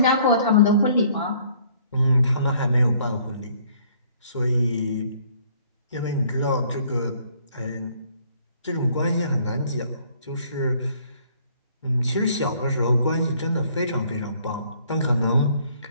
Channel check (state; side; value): inverted; both; correlation -0.61